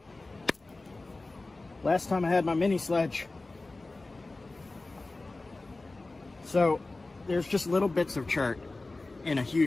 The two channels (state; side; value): quieter; right; 3.2 dB